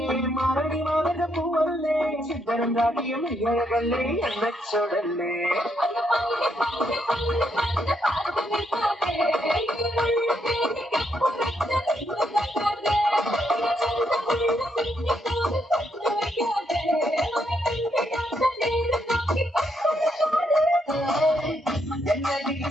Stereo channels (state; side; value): normal; both; correlation 0.76